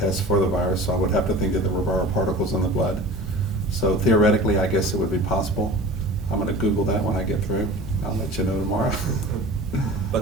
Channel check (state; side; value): normal; both; correlation 0.39